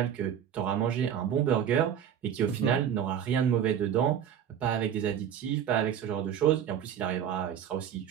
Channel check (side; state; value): left; quieter; 9.1 dB